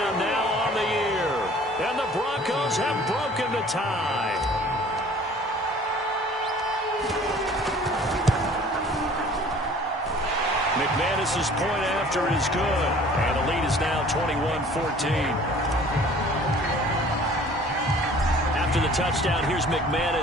now on the year. And the Broncos have broken the tie. McManus's point after is good. And the lead is now 21-14. After the touchdown, here's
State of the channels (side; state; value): both; normal; correlation 0.50